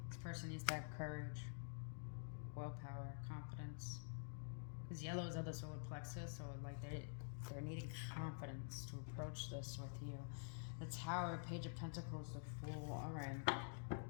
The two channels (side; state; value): right; silent; digital silence